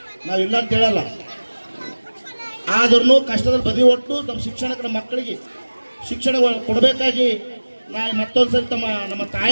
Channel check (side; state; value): both; inverted; correlation -1.00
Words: ನಾವಿಲ್ಲ ಅಂತ ಹೇಳಲ್ಲ, ಆದ್ರೂ ಕಷ್ಟದಲ್ಲಿ ಬದಿ ಒಟ್ಟು ನಮ್ಮ ಶಿಕ್ಷಣಕ್ಕೆ, ನಮ್ಮ ಮಕ್ಕಳಿಗೆ ಶಿಕ್ಷಣ ಕೊಡಬೇಕಾಗಿ ನಾನು ಮತ್ತೊಂದ್ಸರಿ ನಮ್ಮ